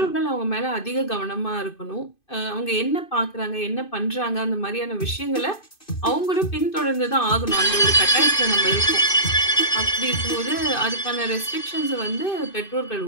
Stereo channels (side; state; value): right; late; 2.5 ms